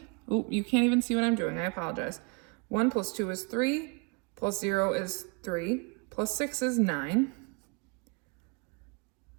Oh, you can't even see what I'm doing. I apologize. 1 plus 2 is 3, plus 0 is 3, plus 6 is 9.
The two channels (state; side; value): quieter; left; 32.3 dB